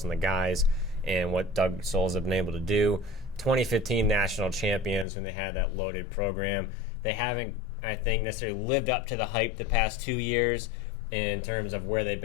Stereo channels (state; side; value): drops out; right; at 5.1 s